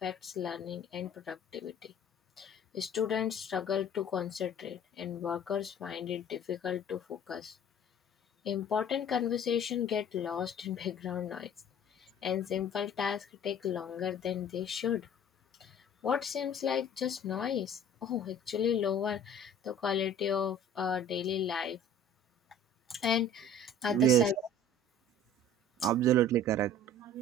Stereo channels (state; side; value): normal; both; correlation 0.47